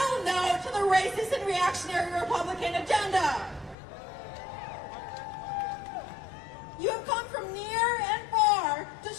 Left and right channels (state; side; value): drops out; right; at 3.8 s